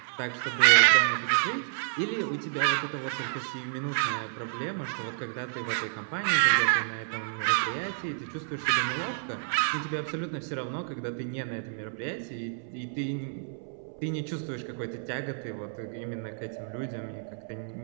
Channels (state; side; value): silent; left; 58 dB below the other